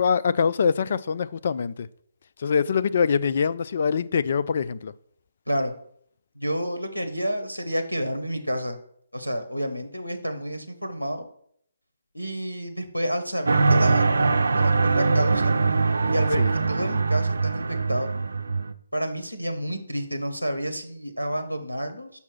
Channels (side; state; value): both; inverted; correlation -0.86